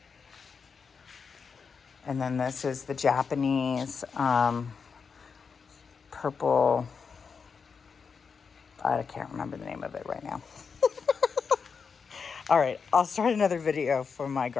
And then this is the Japanese purple. I can't remember the name of it right now. All right, I'll start another video for my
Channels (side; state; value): right; quieter; 5.7 dB